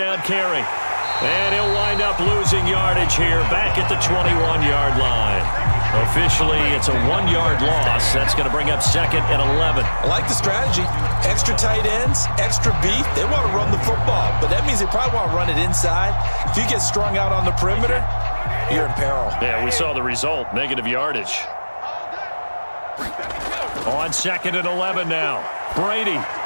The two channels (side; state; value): both; inverted; correlation -1.00